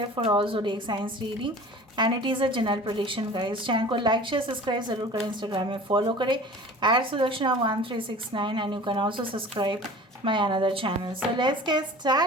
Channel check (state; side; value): normal; both; correlation 0.42